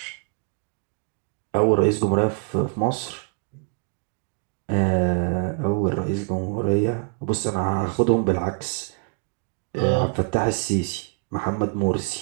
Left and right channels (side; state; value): left; quieter; 36.8 dB